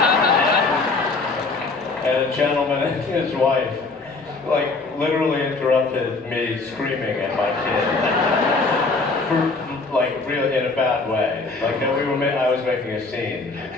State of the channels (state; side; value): quieter; right; 3.8 dB